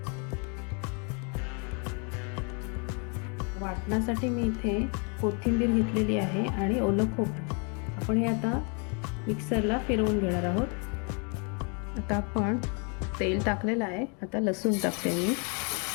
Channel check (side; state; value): right; quieter; 36.4 dB